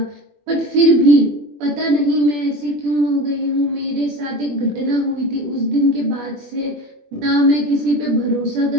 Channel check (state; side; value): late; left; 21 ms